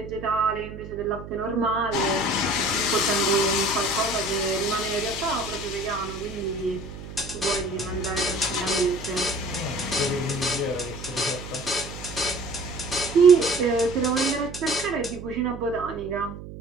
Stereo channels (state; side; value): noise; right; hum, 12 dB below the sound